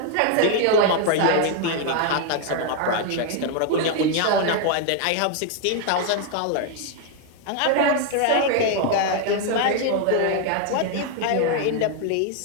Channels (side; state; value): both; different; correlation 0.00